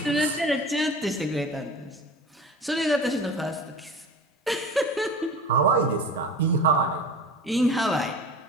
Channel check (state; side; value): normal; both; correlation 0.36